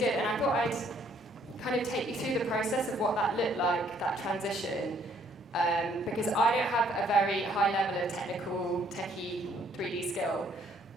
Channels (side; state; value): both; normal; correlation 0.64